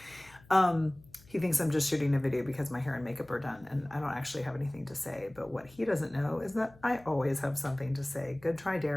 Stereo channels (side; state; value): left; noise; hum, 25 dB below the sound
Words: He thinks I'm just shooting a video because my hair and makeup are done and I don't actually have anything to say. But what he doesn't know is that I always have something to say. Good try,